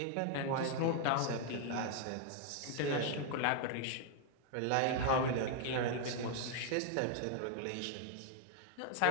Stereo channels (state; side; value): different; both; correlation 0.00